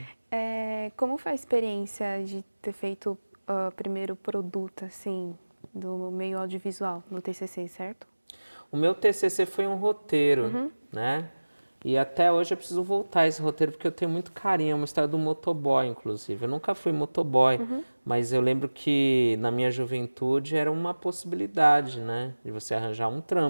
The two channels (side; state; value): both; inverted; correlation -1.00